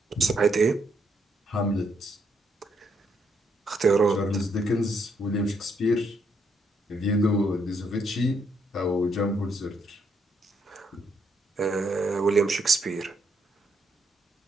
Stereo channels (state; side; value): normal; both; correlation 0.75